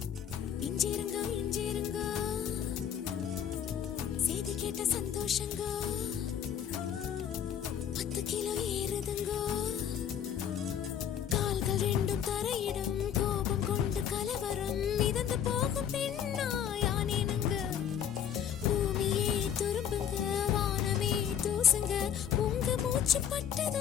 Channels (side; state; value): right; quieter; 9.0 dB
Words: இஞ்சிருங்க இஞ்சிருங்க செய்தி கேட்ட சந்தோஷங்க 10 கிலோ ஏறுதுங்கோ கால்கள் ரெண்டும் தரையிடம் கோபம் கொண்டு கலவரம் மிதந்து போகும் பெண்ணாயானேனுங்க பூமியே துரும்புங்க வானமே தூசுங்க உங்க மூச்சு